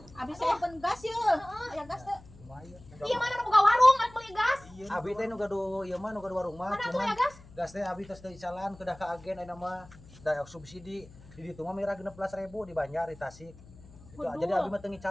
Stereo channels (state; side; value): noise; left; hum, 21 dB below the sound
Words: Abis saya open gas yuk. Aya gas teh. Lumayan. Iya mana nu boga warung arek beli gas. Abi teh nu gaduh ieu mah nu gaduh warung mah Mana tuh cuman ya gas? gas teh abi tos teu calan kedah ka agen ayeuna mah da subsidi. Di ditu mah mira 16.000 di Banjar di Tasik. Itu Waduh. jadi abi mah teu